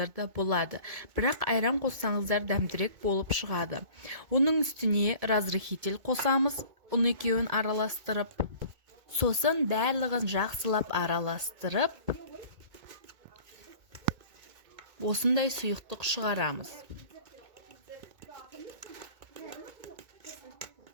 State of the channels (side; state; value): left; late; 2.2 ms